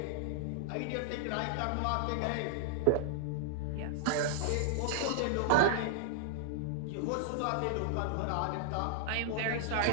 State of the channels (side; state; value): both; different; correlation -0.01